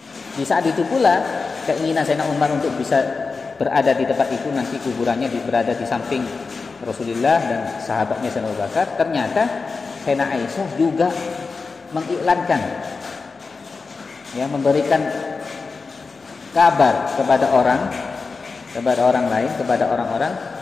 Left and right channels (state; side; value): quieter; right; 4.4 dB